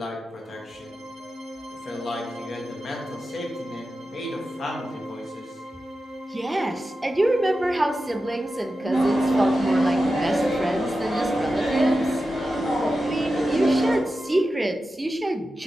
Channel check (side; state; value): both; normal; correlation 0.92